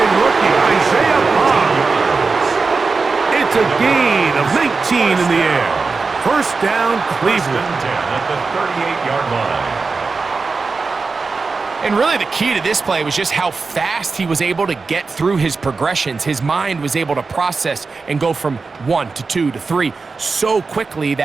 rookie, Isaiah Bond. It's a gain of 19 in the air. First down, Cleveland. First and 10 at the 38-yard line. And really the key to this play was just how fast he was able to get through his progressions. His mind was able to process and go from 1 to 2 to 3 so quickly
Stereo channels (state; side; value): quieter; left; 4.3 dB